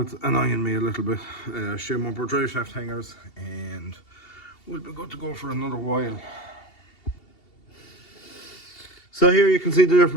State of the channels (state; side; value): late; right; 2.7 ms